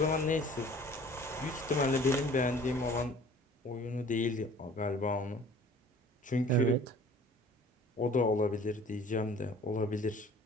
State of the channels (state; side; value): normal; both; correlation 0.49